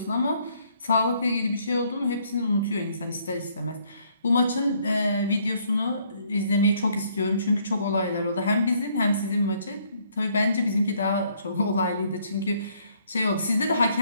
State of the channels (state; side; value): inverted; both; correlation -0.66